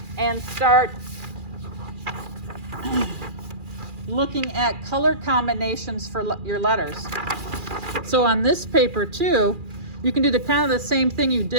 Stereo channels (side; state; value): left; late; 2.4 ms